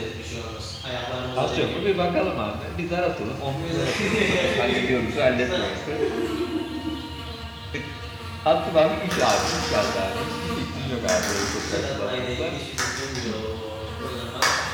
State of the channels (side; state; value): both; identical; correlation 1.00